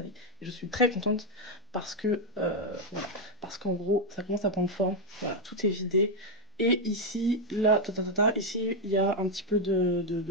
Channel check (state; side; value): normal; both; correlation 0.03